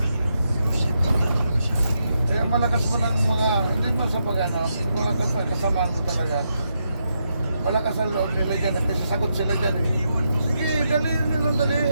Kaya malakas mo ng mga, hindi mo sa pag-ano, mga kasamaan mo talaga. Malakas ang loob nila dyan at sasagot sila dyan eh. Sige, daliin nilang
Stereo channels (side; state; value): both; inverted; correlation -0.82